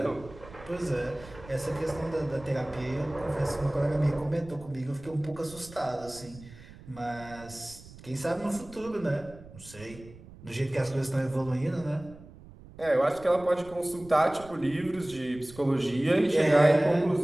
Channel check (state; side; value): noise; right; rumble, 19 dB below the sound